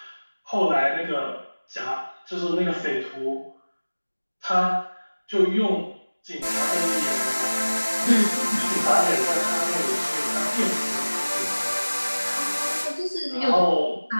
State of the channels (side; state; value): both; inverted; correlation -1.00